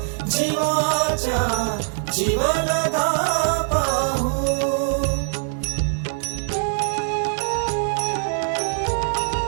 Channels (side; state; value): left; silent; digital silence